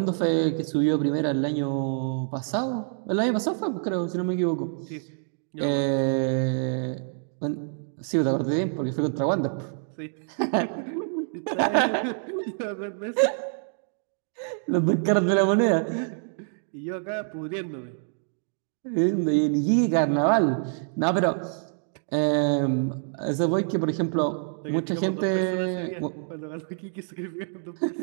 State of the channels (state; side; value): silent; left; digital silence